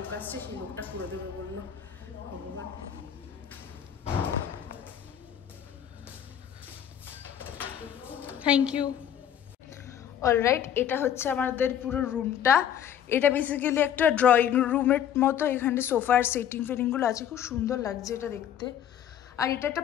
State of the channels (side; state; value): right; quieter; 9.7 dB